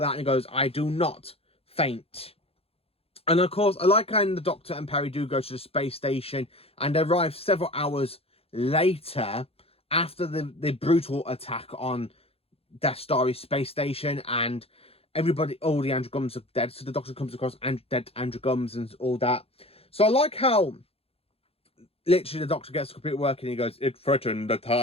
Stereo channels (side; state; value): right; late; 0.28 ms